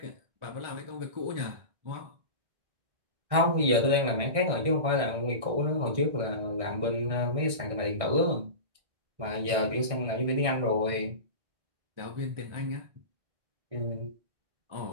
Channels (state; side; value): late; left; 1.6 ms